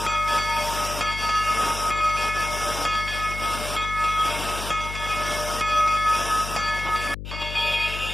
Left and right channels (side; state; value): left; noise; hum, 8 dB below the sound